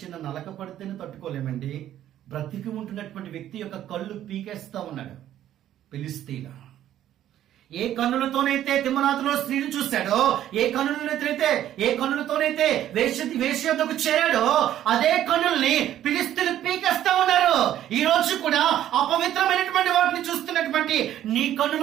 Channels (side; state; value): left; quieter; 11.9 dB